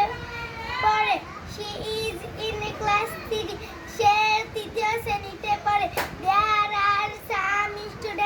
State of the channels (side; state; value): both; identical; correlation 1.00